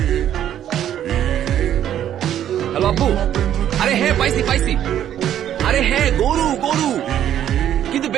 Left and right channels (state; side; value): quieter; left; 10.8 dB